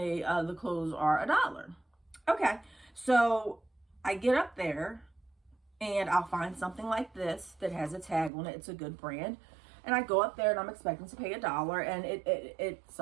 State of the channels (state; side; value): drops out; left; at 8.3 s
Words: the clothes are $1. Okay. So I get up there and I'll find something like this that has a tag on it. It's a good brand. And I go up there and I'm expecting to pay $1. And it